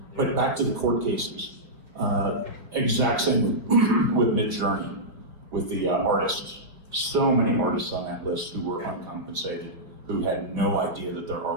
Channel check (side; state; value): left; late; 4.4 ms